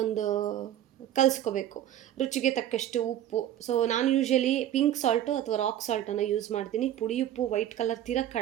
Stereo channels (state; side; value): quieter; left; 11.7 dB